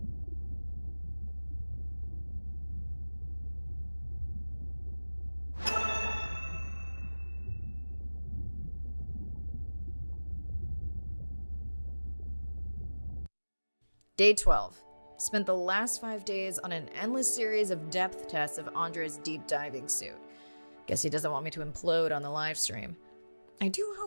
Day 12. Spent the last 5 days on an endless series of depth tests of Andre's deep diving suit. Guess he doesn't want me to implode on the live stream. I do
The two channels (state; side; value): inverted; both; correlation -1.00